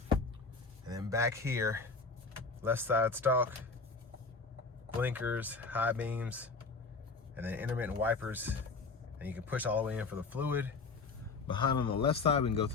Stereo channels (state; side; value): quieter; right; 4.2 dB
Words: and then back here, left side stalk, blinkers, high beams, and then intermittent wipers, and you can push all the way in for the fluid. Behind on the left side, we can go